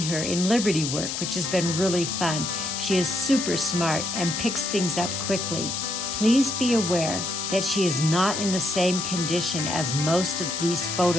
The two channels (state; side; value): noise; left; hiss, 3 dB below the sound